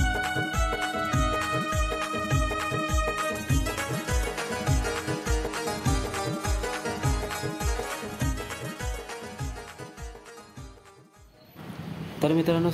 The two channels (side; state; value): both; identical; correlation 1.00